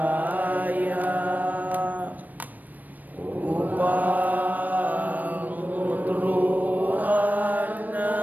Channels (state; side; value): late; left; 0.084 ms